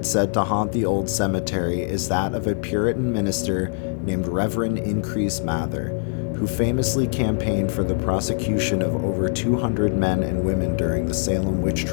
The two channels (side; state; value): right; silent; digital silence